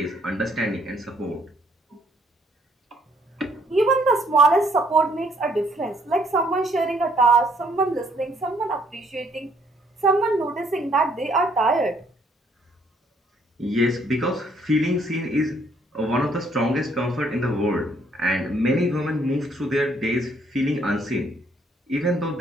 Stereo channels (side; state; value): both; normal; correlation 0.66